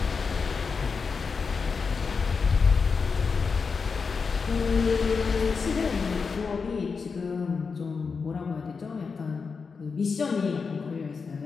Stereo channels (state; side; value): quieter; right; 5.1 dB